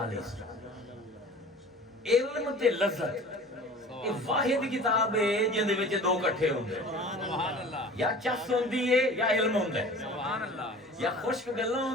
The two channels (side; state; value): both; normal; correlation 0.42